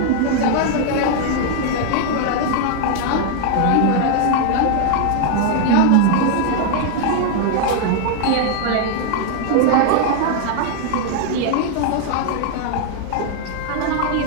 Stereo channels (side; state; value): both; different; correlation 0.00